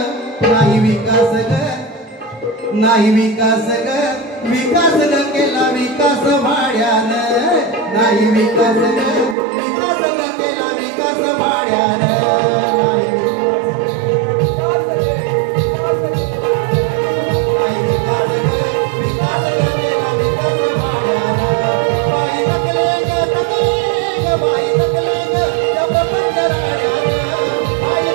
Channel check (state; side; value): drops out; left; at 9.3 s